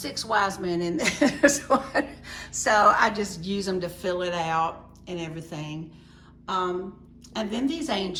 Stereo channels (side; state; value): both; identical; correlation 1.00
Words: wise men in this one. So I just use them to fill it out and everything. And then these